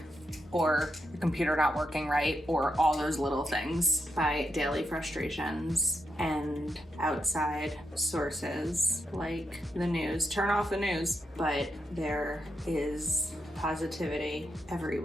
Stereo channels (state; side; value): normal; both; correlation 0.82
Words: or the computer not working right, or all those little things, by daily frustrations and outside sources like the news. Turn off the news. But there is positivity